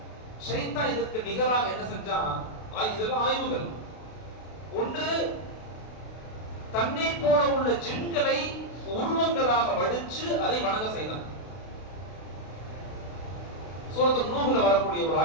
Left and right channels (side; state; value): right; late; 32 ms